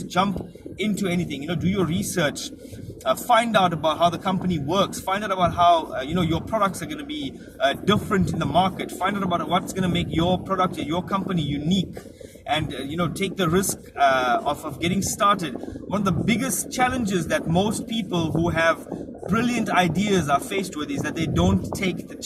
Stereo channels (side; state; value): both; identical; correlation 1.00